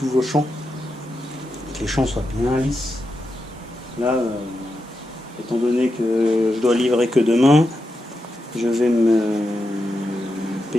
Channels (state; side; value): normal; both; correlation 0.87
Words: vos champs, que les champs soient bien lisses. Là, étant donné que je dois livrer que demain, je vais me